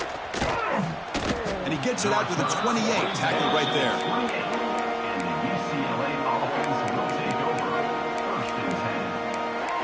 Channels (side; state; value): both; identical; correlation 1.00